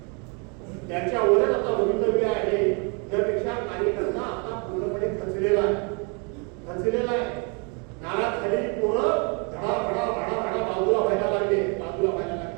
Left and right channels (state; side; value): quieter; left; 34.7 dB